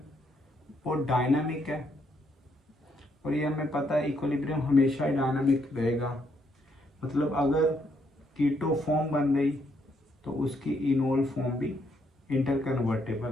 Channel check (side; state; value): both; normal; correlation 0.74